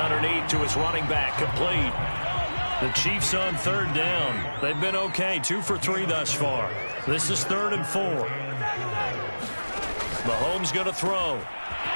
to his running back, complete. The Chiefs on 3rd down. They've been okay, 2 for 3 thus far. This is 3rd and 4. Mahomes going to throw.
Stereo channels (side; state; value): both; inverted; correlation -1.00